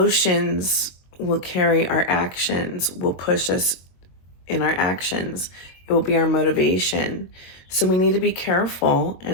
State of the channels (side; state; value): right; late; 22 ms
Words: will carry our actions, will push us in our actions. It will be our motivation. So we need to be careful,